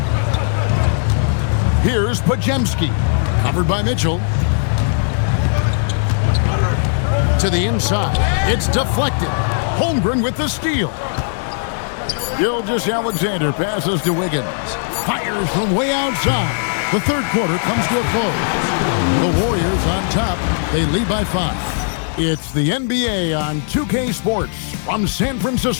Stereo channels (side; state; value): right; silent; digital silence